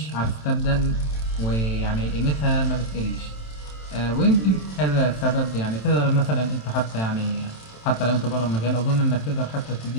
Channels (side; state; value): right; late; 27 ms